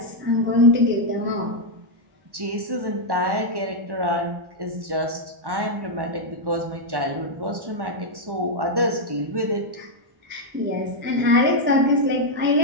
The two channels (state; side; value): late; left; 1.1 ms